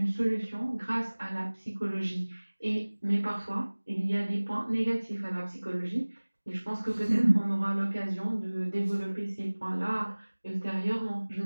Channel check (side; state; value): both; inverted; correlation -1.00